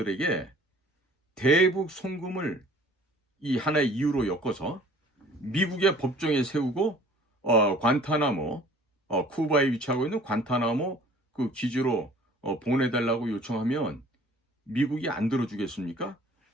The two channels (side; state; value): both; normal; correlation 0.51